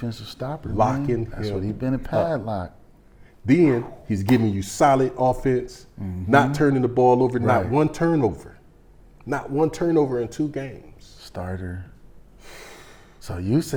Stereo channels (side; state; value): both; identical; correlation 1.00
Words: stopper. Locking That's him what he been a padlock. then he's giving you solid offense, not turning the ball over, not one turnover. Not one turnover in 2 games. Starter. So you